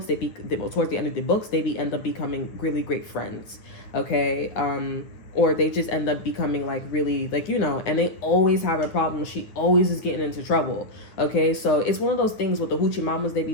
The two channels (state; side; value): late; right; 9.2 ms